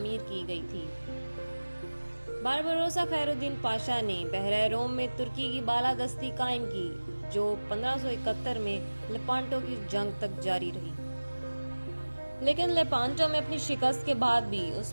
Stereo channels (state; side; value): inverted; both; correlation -1.00